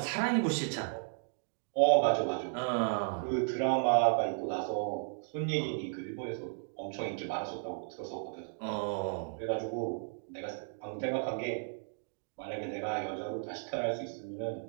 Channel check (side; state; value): left; silent; digital silence